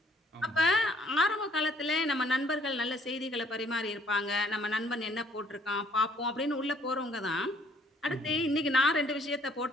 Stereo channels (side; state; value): both; normal; correlation 0.63